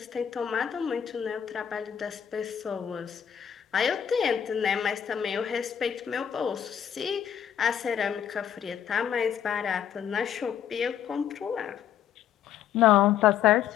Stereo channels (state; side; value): quieter; right; 9.1 dB